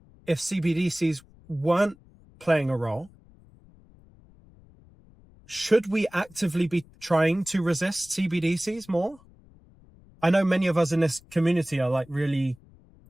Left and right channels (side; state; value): left; noise; rumble, 27 dB below the sound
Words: if CBDCs weren't playing a role, should we actively be trying to resist CBDCs more? I know many of us in this community are like really